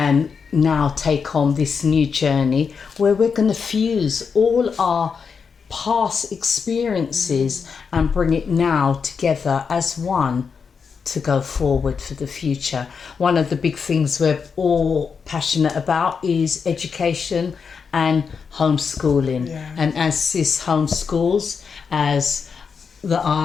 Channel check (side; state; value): right; quieter; 5.9 dB